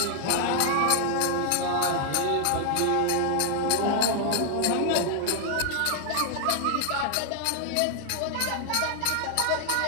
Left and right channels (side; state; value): both; different; correlation -0.01